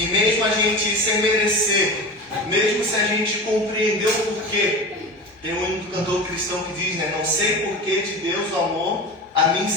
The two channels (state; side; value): normal; both; correlation 0.29